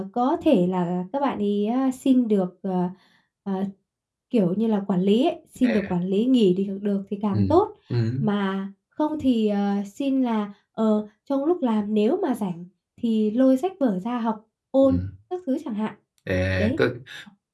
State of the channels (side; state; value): both; identical; correlation 1.00